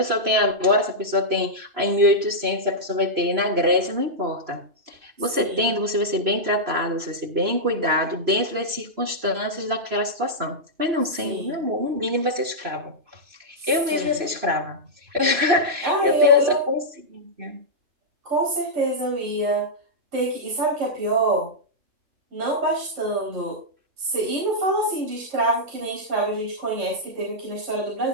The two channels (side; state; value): left; late; 3.0 ms